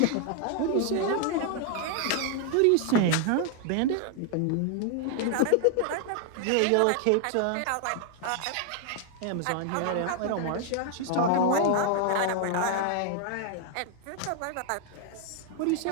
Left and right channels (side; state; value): both; different; correlation 0.00